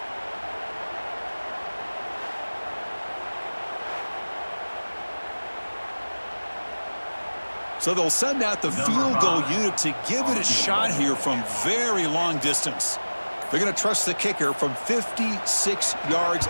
So they'll send out the field goal unit to give it a shot here from very long distance. They're going to trust the kicker from 56 yards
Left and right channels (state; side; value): inverted; both; correlation -1.00